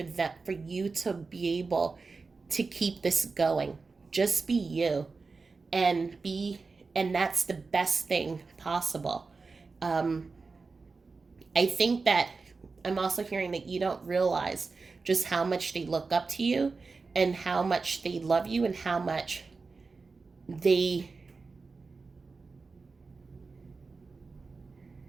you to be able to keep this going. Just be you, and be and that's the best thing possible. Um, I think that I'm also hearing that you don't realize just how much they look up to you and how much they love you and how much they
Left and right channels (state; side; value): quieter; left; 4.2 dB